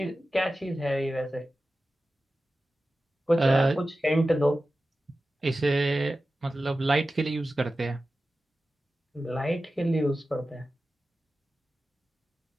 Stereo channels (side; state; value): both; normal; correlation 0.94